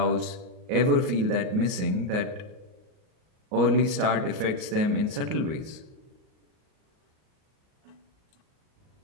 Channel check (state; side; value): late; left; 38 ms